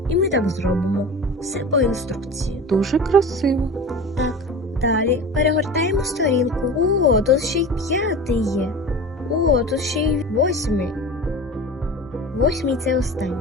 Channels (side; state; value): both; normal; correlation 0.34